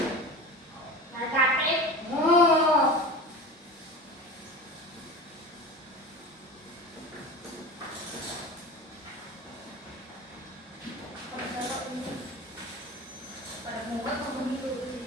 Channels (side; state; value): both; normal; correlation 0.32